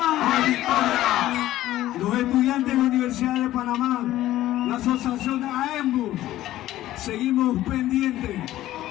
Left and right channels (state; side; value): quieter; right; 14.5 dB